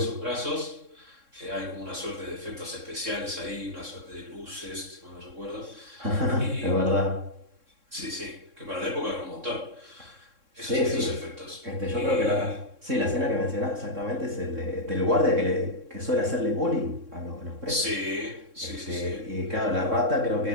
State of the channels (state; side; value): late; left; 3.6 ms